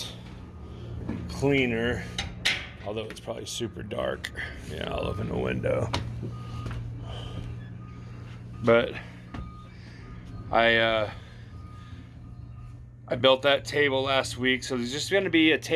cleaner, although it's probably super dark. Yeah, I'll open the window. But I built that table last week, so there's just going to be a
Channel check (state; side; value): identical; both; correlation 1.00